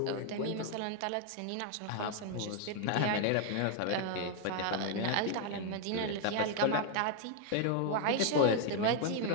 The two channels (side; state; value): both; different; correlation 0.00